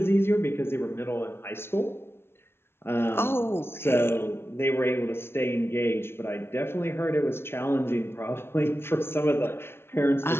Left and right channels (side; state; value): right; late; 0.12 ms